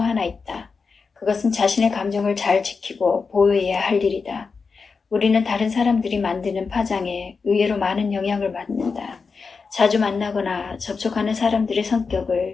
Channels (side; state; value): right; quieter; 4.9 dB